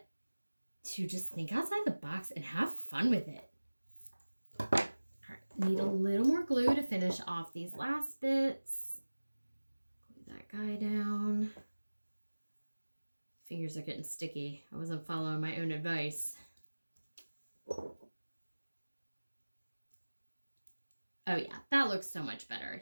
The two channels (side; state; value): both; inverted; correlation -1.00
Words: to just think outside the box and have fun with it. All right, need a little more glue to finish off these last bits. Glue that guy down. Fingers are getting sticky. I wasn't following my own advice. Oh yeah, that looks so much